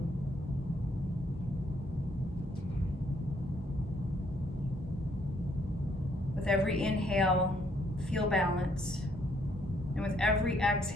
With every inhale, feel balance. And with every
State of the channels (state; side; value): normal; both; correlation 0.69